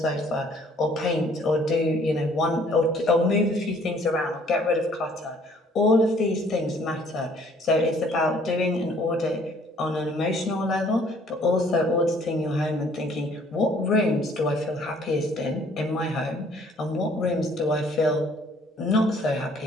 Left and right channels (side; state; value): both; normal; correlation 0.59